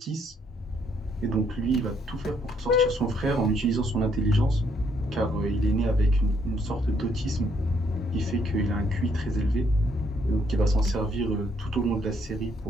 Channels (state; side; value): normal; both; correlation 0.70